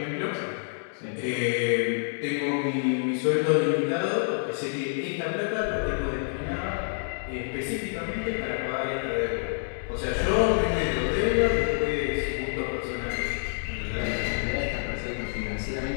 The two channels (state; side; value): silent; right; digital silence